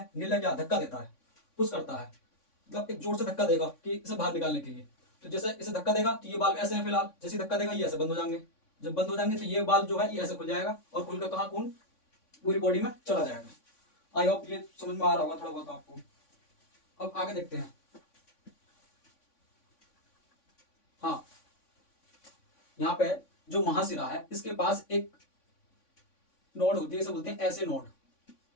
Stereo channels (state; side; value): late; right; 3.5 ms